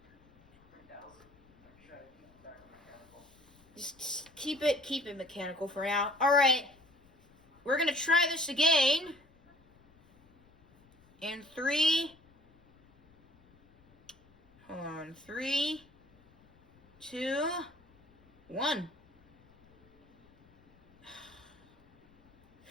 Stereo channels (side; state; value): left; noise; rumble, 30 dB below the sound